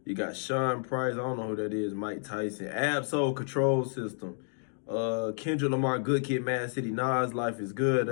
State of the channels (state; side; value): silent; right; 57 dB below the other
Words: You got Sean Price. I don't know who that is. Mike Tyson. Absol Control System. Kendrick Lamar, Good Kid, Mad City. Nas, Life is Good